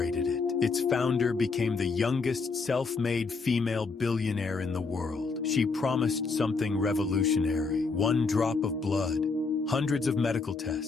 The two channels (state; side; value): quieter; right; 4.4 dB